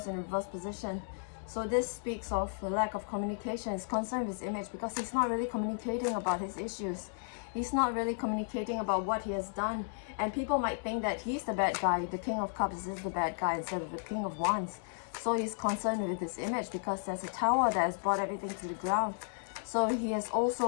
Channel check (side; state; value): right; silent; digital silence